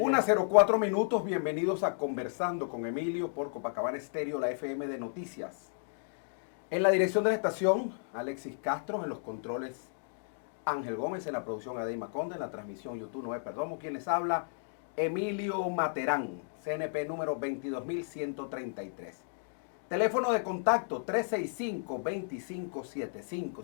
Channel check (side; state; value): right; silent; digital silence